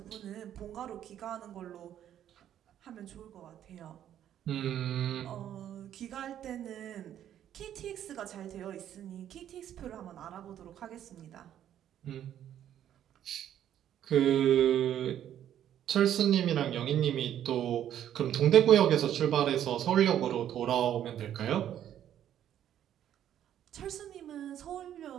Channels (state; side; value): quieter; left; 10.7 dB